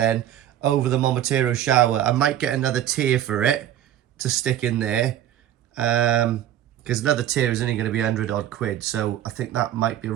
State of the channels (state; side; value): quieter; left; 11.5 dB